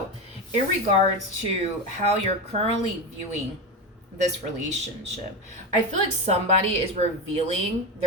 in regards to how you're currently viewing this relationship, I feel like somebody is revealing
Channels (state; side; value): normal; both; correlation 0.18